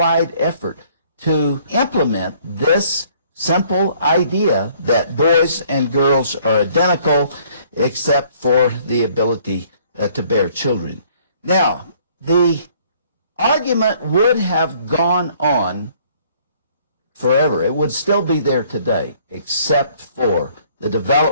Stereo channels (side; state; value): both; inverted; correlation -0.61